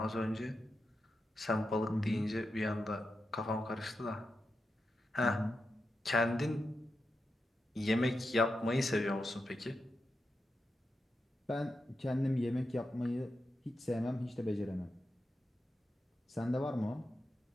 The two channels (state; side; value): normal; both; correlation 0.88